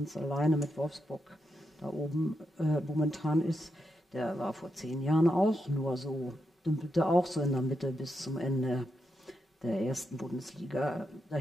alleine mit Wolfsburg da oben momentan ist, der war vor 10 Jahren auch nur so, dümpelte auch so in der Mitte bis zum Ende der ersten Bundesliga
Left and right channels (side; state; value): both; normal; correlation 0.85